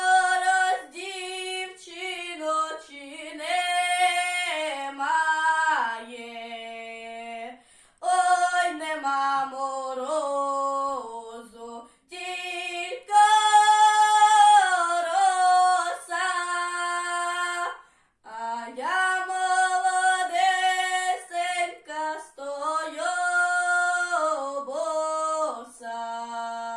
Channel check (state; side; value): identical; both; correlation 1.00